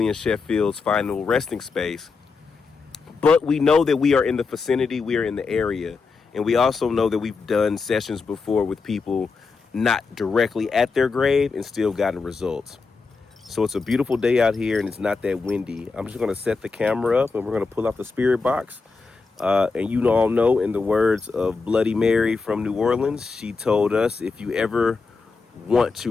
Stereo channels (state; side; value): quieter; right; 4.5 dB